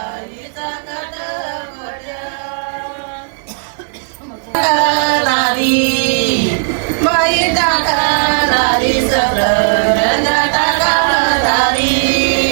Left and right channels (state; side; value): silent; left; digital silence